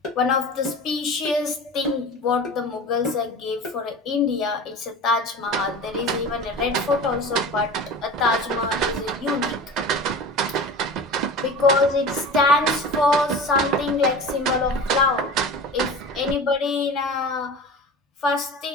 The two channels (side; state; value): both; normal; correlation 0.34